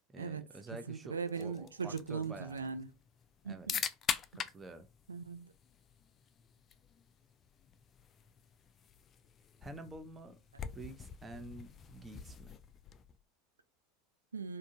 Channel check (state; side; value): normal; both; correlation -0.01